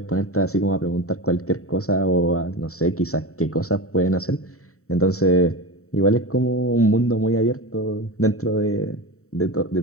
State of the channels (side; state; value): right; late; 0.64 ms